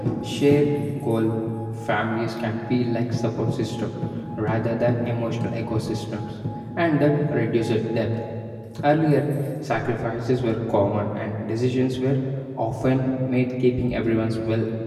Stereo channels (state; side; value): identical; both; correlation 1.00